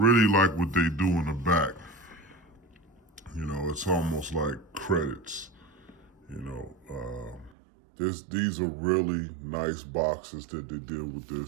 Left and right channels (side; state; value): left; drops out; at 7.5 s